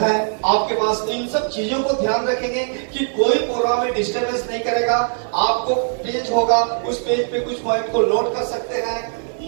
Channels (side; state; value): left; silent; digital silence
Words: आपके पास, तो इन सब चीजों को ध्यान रखेंगे कि कोई प्रोग्राम में डिस्टर्बेंस नहीं करेगा। आपको पेज होगा, उस पेज पे कुछ पॉइंट को नोट कर सकते हैं।